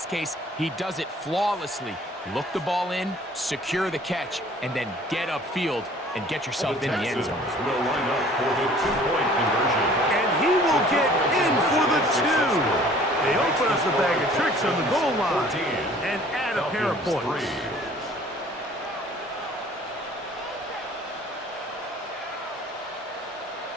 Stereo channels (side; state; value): both; normal; correlation 0.52